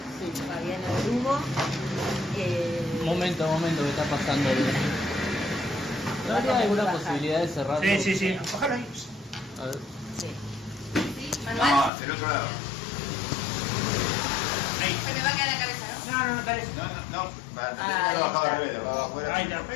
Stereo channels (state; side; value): drops out; right; at 11.9 s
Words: Fabiana Drugo. Momento, ¿qué está pasando? ¿No habría alguna posibilidad de cerrarlo? Sí. Ojalá ahí. A ver. Sí. ¿Sí? ¿Manuel? No, del otro lado. Ahí. Se me va a quedar la cabeza, ¿no? No, dale. No, para tener que lo bajaba al revés, lo bajaba afuera. Ahí está.